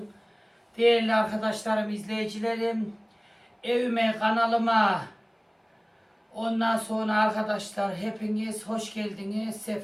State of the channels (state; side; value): identical; both; correlation 1.00